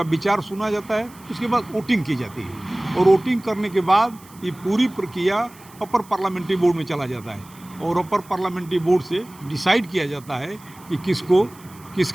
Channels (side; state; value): right; noise; hiss, 24 dB below the sound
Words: विचार सुना जाता है। उसके बाद वोटिंग की जाती है और वोटिंग करने के बाद ये पूरी प्रक्रिया अपर पार्लियामेंट्री बोर्ड में चला जाता है और अपर पार्लियामेंट्री बोर्ड से डिसाइड किया जाता है कि